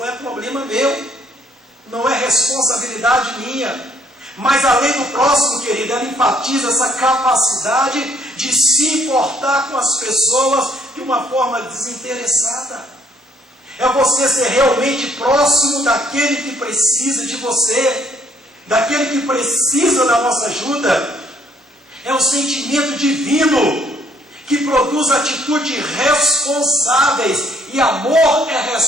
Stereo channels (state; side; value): normal; both; correlation 0.66